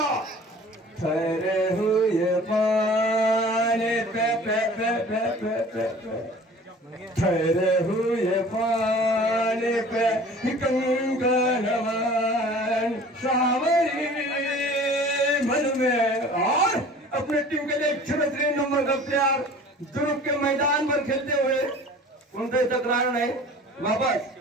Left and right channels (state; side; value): normal; both; correlation 0.45